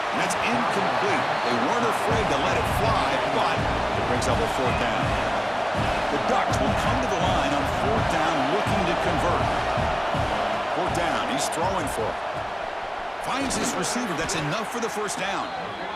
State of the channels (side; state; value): both; identical; correlation 1.00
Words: And that's incomplete. They weren't afraid to let it fly, but it brings up a 4th down. The Ducks will come to the line on 4th down looking to convert. 4th down. He's throwing for it. Finds his receiver. That's enough for the 1st down.